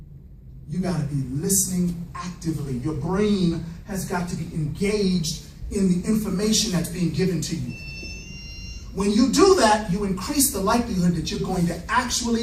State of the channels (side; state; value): both; identical; correlation 1.00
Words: You got to be listening actively. Your brain has got to be engaged in the information that's being given to you. When you do that, you increase the likelihood that you're going to